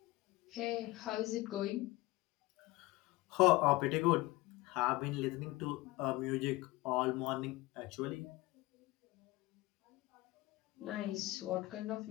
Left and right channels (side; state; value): right; quieter; 20.0 dB